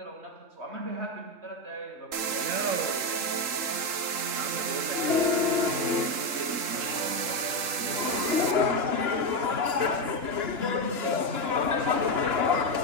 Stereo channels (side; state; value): left; late; 3.8 ms